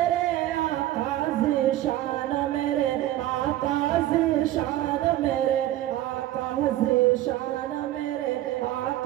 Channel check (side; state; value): left; quieter; 14.3 dB